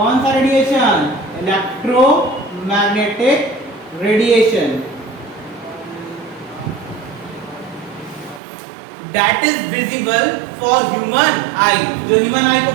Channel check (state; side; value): drops out; left; at 8.4 s